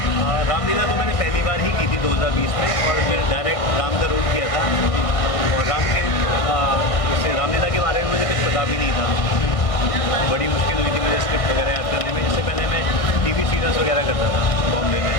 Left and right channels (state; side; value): late; right; 1.6 ms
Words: रामलीला तो मैंने पहली बार ही की थी 2020 में, और फिर डायरेक्ट राम का रोल किया था। और राम के इससे रामलीला के बारे में मुझे कुछ पता भी नहीं था। बड़ी मुश्किल हुई थी मुझे स्क्रिप्ट वगैरह याद करने में। इससे पहले मैं TV सीरियल्स वगैरह करता था बॉम्बे में।